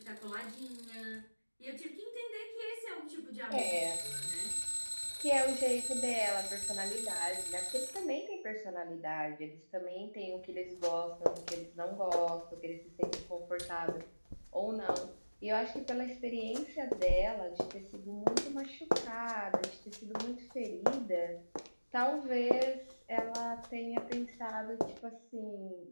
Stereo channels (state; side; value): inverted; both; correlation -1.00